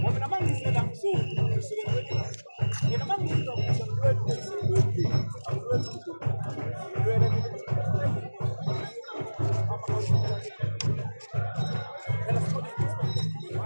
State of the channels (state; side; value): inverted; both; correlation -1.00